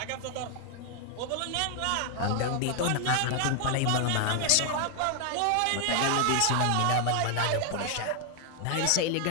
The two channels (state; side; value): different; both; correlation 0.00